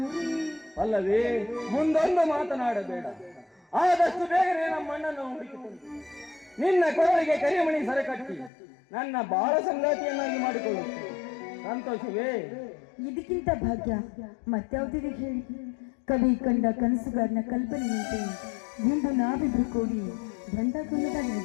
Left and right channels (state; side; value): drops out; right; at 8.5 s